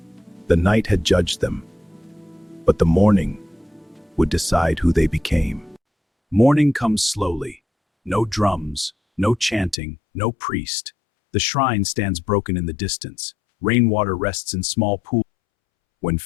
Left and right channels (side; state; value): right; drops out; at 9.8 s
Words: The night had judged them, but the morning would decide who they became. Morning comes slowly. No drums, no chanting, no priest. The shrine stands broken in the distance. Rainwater rests in small pools. When